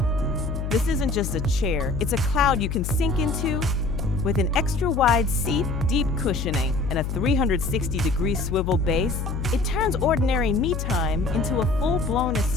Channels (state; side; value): noise; left; hum, 3 dB below the sound